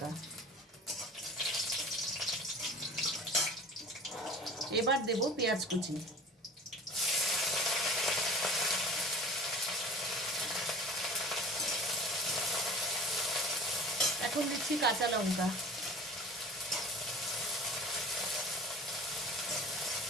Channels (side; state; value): both; normal; correlation 0.40